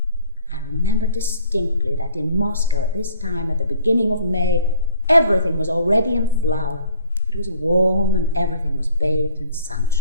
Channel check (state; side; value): inverted; both; correlation -0.54